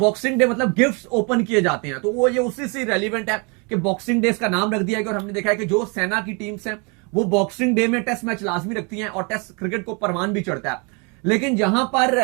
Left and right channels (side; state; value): left; quieter; 32.6 dB